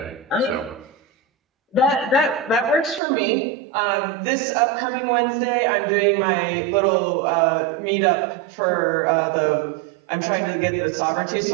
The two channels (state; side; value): drops out; left; at 3.0 s